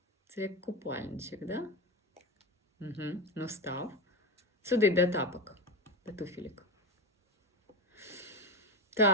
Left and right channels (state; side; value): normal; both; correlation 0.17